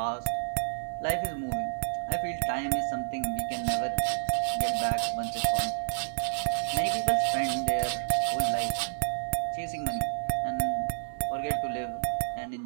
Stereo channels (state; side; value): silent; left; digital silence